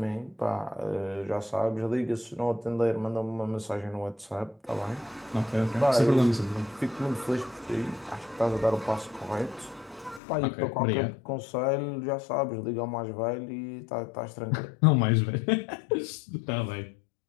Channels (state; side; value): drops out; right; at 10.2 s